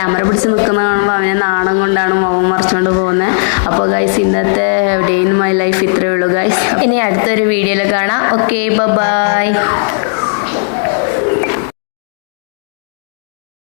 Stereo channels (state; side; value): silent; right; digital silence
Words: പിടിച്ച് നിൽക്കുന്ന കാണുമ്പോൾ അവനെ നാണം കൊണ്ടാണ് മുഖം മറിച്ചുകൊണ്ട് പോകുന്നത്. അപ്പോൾ ഗൈസ് ഇന്നത്തെ ഡേ ഇൻ മൈ ലൈഫ് ഇത്രയേ ഉള്ളൂ ഗൈസ്. ഇനി അടുത്തൊരു വീഡിയോയിൽ കാണാം. Okay, by.